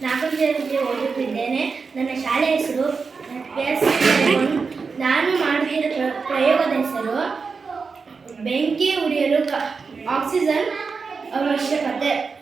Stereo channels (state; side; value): quieter; left; 4.9 dB